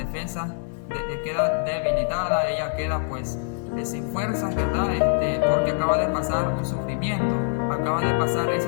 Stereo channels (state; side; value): silent; right; 62 dB below the other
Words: queda debilitada, ella queda pues sin fuerzas, ¿verdad? Porque acaba de pasar un sufrimiento, acaba de pasar